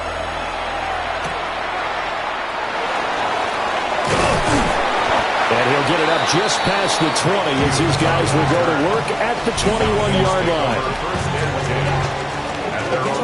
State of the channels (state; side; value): identical; both; correlation 1.00